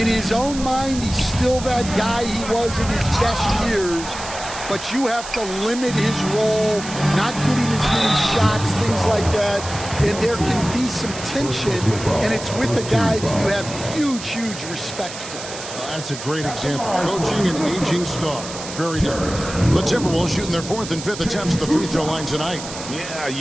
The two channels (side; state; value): right; noise; hiss, 11 dB below the sound